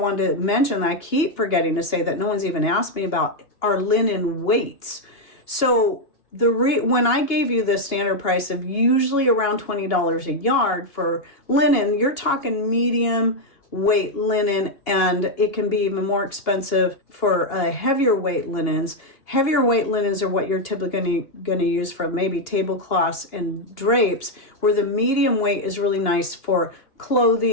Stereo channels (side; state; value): right; late; 2.8 ms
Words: to mention that I keep forgetting to say that no one's even asked me about are linen weights. So when I gave you the standard price of usually around $20 a yard for linen, you're talking medium weight linen, and it can be even more expensive for heavier weight linens. Heavier weight linens are what you're typically going to use for maybe tablecloths and drapes, where the medium weight is really nice for